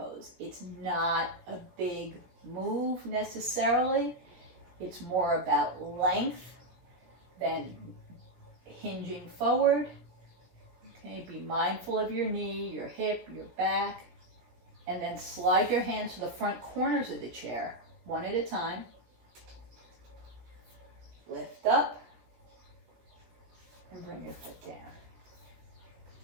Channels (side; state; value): left; late; 17 ms